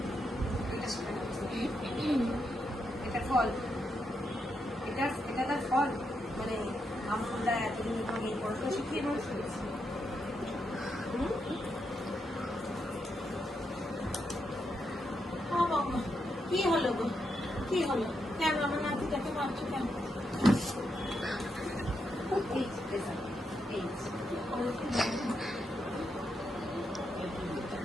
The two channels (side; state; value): both; normal; correlation 0.82